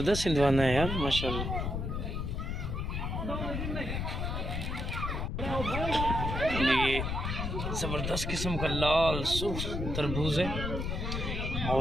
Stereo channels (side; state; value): left; noise; rumble, 2 dB below the sound